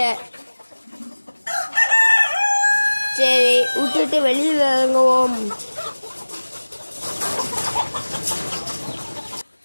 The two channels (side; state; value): both; inverted; correlation -1.00